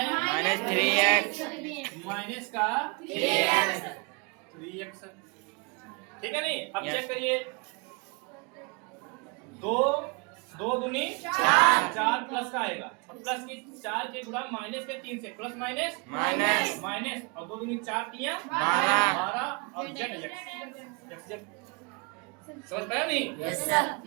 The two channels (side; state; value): left; quieter; 31.5 dB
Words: माइनस 3x माइनस का 3x, ठीक है नहीं। अब Yes. चेक करिए, 2 दूनी 4 प्लस का आएगा, और प्लस की 4 के गुणा माइनस के 3 से, प्लस माइनस माइनस माइनस, और 2 दूनी 4 तिया 12 और z समझ पाया नहीं? Yes sir.